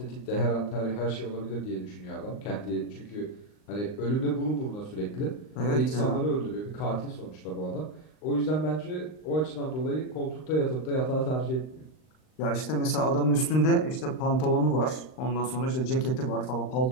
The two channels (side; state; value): right; late; 39 ms